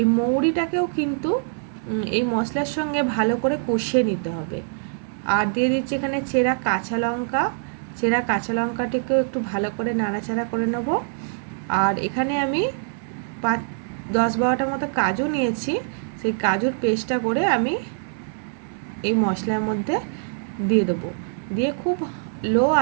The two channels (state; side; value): silent; left; 61 dB below the other